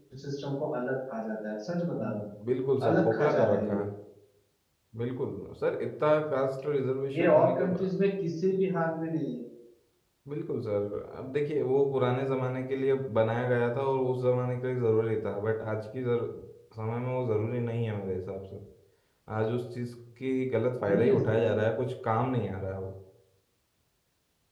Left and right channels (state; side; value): identical; both; correlation 1.00